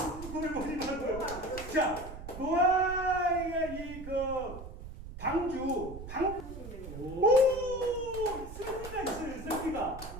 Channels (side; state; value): right; noise; rumble, 11 dB below the sound